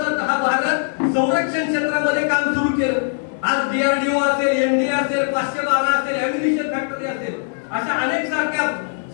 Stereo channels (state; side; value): silent; right; 64 dB below the other